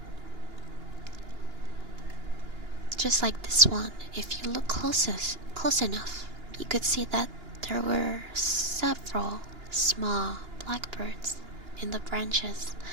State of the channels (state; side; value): late; left; 2.9 ms